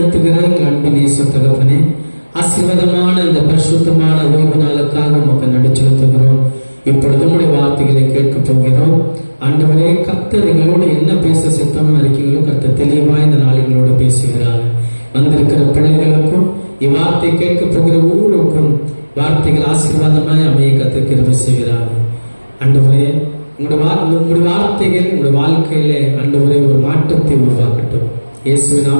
எங்கள் அன்பு நேச தகப்பனே, ஆசீர்வாதமான இந்த பரிசுத்தமான ஓய்வு நாளுக்காக நமக்கு நடு செலுத்துகிறோம். இப்பொழுது உங்களுடைய வார்த்தைகளை கேட்க போகிறோம். ஆண்டவரே, கர்த்தர் எங்களோடு என்ன பேச சித்தமா இருக்கீங்களோ கர்த்தர் தெளிவாய் இந்த நாளுகளோடு பேசுகிறார். வந்திருக்கிற பிள்ளைகளுக்கும் இவ்வார்த்தை கேட்க போகிற ஒவ்வொருக்கும் வார்த்தைகள் ஆசீர்வாதமாய் அமைய கர்த்தர் கிருபை செய்கிறார். ஆண்டவரே, உங்களுடைய வார்த்தைகள் உங்களுடைய வாழ்க்கையிலே ஆண்டவரே ஒரு மாற்றத்தை உருவாக்கட்டும். இயேசுவின்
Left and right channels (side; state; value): both; inverted; correlation -1.00